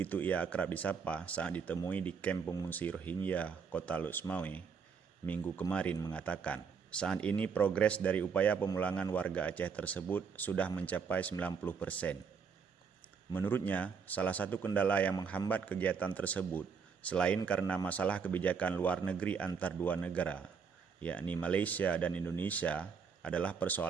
ia akrab disapa saat ditemui di kamp pengungsi Rohingya, Kota Lok Semawe, minggu kemarin mengatakan, saat ini progres dari upaya pemulangan warga Aceh tersebut sudah mencapai 90%. Menurutnya, salah satu kendala yang menghambat kegiatan tersebut, selain karena masalah kebijakan luar negeri antar dua negara, yakni Malaysia dan Indonesia, adalah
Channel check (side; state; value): left; quieter; 6.0 dB